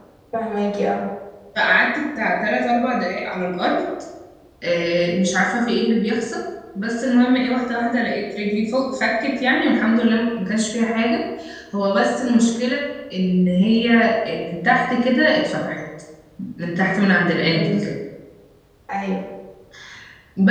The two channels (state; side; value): identical; both; correlation 1.00